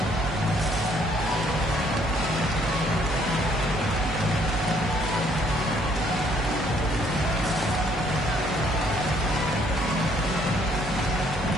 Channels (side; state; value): both; normal; correlation 0.65